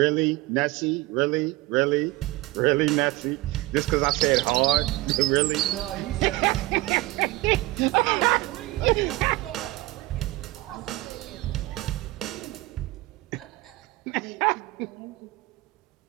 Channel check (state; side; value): quieter; left; 19.4 dB